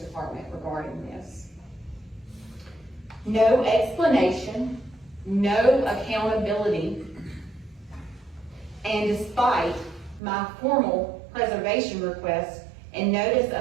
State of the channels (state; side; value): drops out; left; at 10.2 s